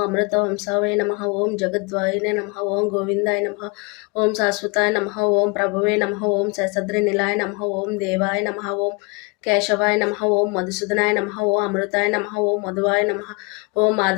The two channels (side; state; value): right; quieter; 29.7 dB